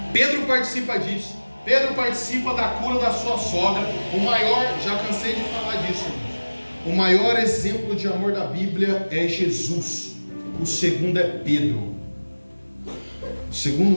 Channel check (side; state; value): both; inverted; correlation -1.00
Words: Pedro participa disso. Pedro participa da cura da sua sogra. O maior, já cansei de falar disso, o maior exemplo de amor da Bíblia é Jesus. O segundo é Pedro. O